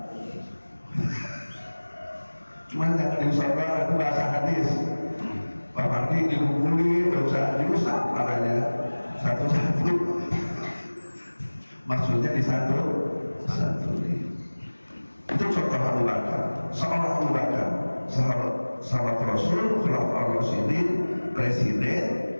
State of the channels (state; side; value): inverted; both; correlation -1.00